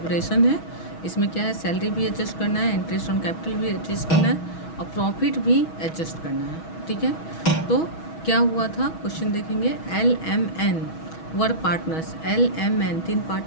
है। इसमें क्या है, सैलरी भी एडजस्ट करना है, इंटरेस्ट ऑन कैपिटल भी एडजस्ट करना है और प्रॉफिट भी एडजस्ट करना है। ठीक है, तो क्या हुआ था क्वेश्चन देखेंगे। LMN were partners. LMN 3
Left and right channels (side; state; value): right; late; 6.2 ms